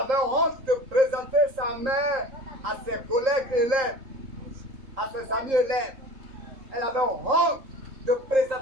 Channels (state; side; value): late; left; 3.8 ms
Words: honte de présenter sa mère à ses collègues élèves, à ses amis élèves. Elle avait honte de